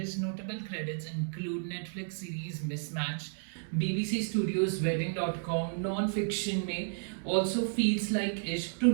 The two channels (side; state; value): left; silent; 56 dB below the other